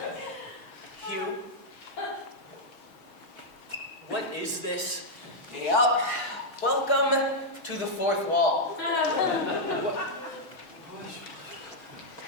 Hugh, what is this? Yup. Welcome to the fourth wall. I'm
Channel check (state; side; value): late; right; 6.3 ms